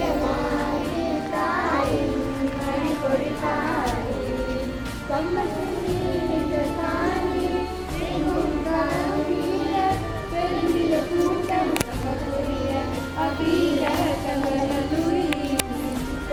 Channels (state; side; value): identical; both; correlation 1.00